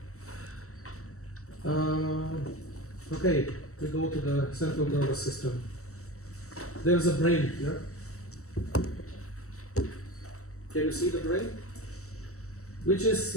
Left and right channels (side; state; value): right; late; 0.64 ms